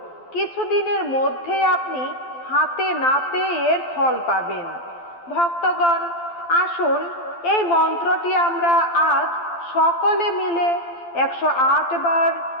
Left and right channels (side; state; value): right; late; 12 ms